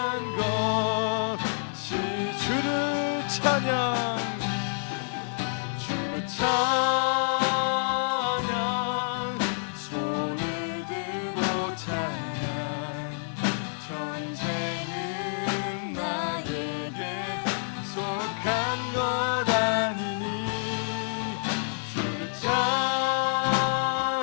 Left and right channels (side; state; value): right; silent; digital silence